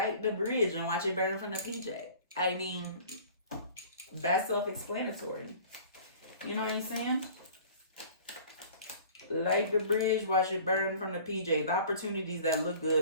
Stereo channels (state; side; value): inverted; both; correlation -0.47